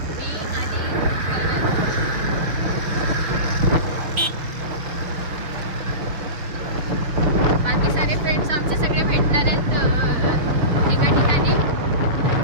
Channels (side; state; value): left; late; 6.3 ms